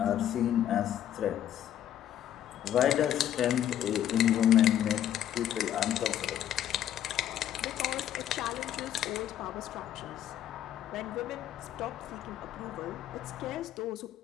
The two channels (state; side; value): quieter; right; 10.9 dB